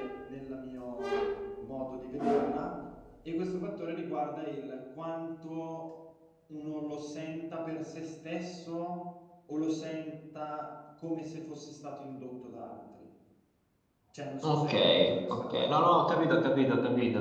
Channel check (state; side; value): identical; both; correlation 1.00